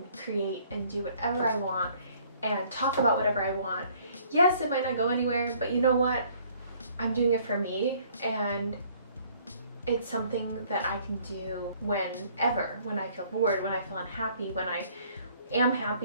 create and do whatever I want and talk about whatever I want. Yes, it might not go anywhere, but you know what? I'm doing it for me, and it's something that I can do whenever, when I feel bored, when I feel unhappy, when I am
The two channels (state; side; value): inverted; both; correlation -0.60